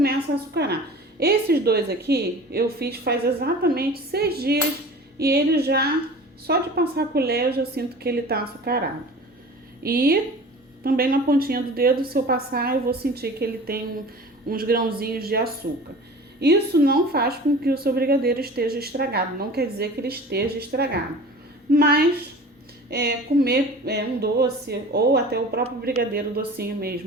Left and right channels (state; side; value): normal; both; correlation 0.40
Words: a açucarar. Esses 2 aqui eu fiz faz exatamente 6 dias e ele já, só de passar a colher eu já sinto que ele tá açucarado. E também na pontinha do dedo, se eu passar, eu vou sentir que ele tem uns grãozinhos de açúcar. Isso não faz com que o seu brigadeiro esteja estragado, não quer dizer que ele esteja estragado. Mas comer um doce ou até o próprio brigadeiro docinho